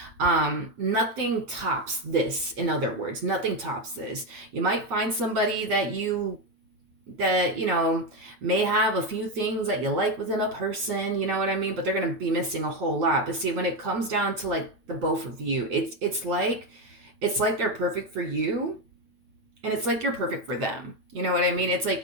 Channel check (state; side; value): late; left; 8.9 ms